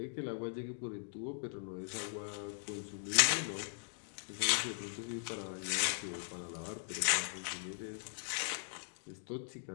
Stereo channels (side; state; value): right; silent; digital silence